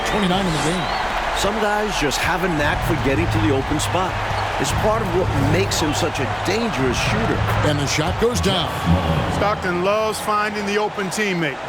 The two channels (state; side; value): identical; both; correlation 1.00